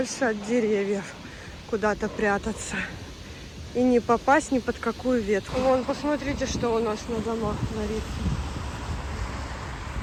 от деревьев. Куда-то прятаться. И не попасть ни под какую ветку. Вон, посмотрите, что у нас на домах творится.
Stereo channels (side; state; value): both; identical; correlation 1.00